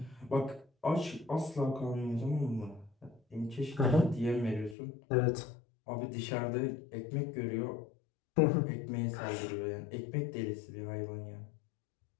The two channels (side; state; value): right; drops out; at 4.8 s